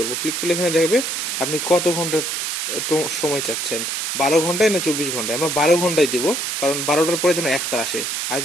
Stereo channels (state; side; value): noise; right; hiss, 2 dB below the sound